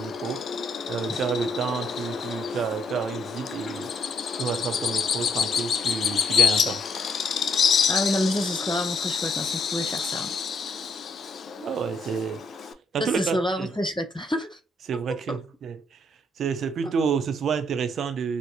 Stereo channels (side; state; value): both; normal; correlation 0.71